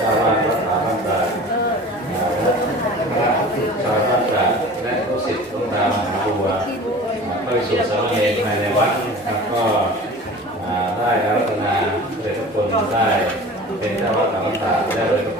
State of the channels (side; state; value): both; normal; correlation 0.40